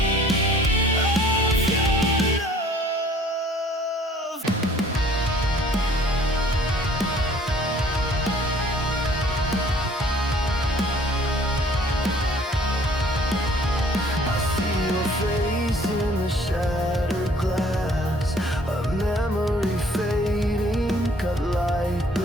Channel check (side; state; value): both; normal; correlation 0.56